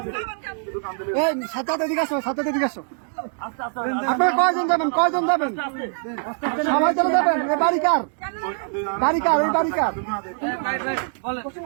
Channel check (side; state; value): left; silent; digital silence